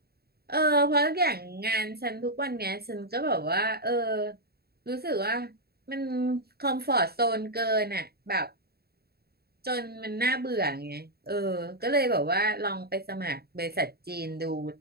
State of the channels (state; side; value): late; left; 0.46 ms